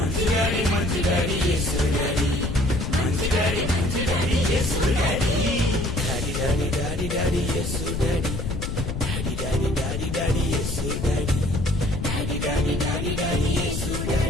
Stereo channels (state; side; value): noise; left; rumble, 4 dB below the sound